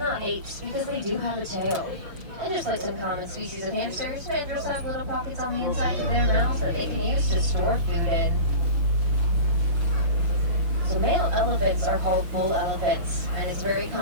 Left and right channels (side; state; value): left; late; 6.2 ms